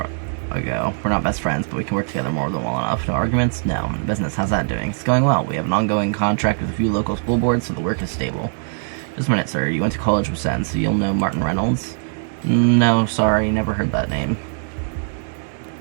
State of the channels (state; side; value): silent; left; digital silence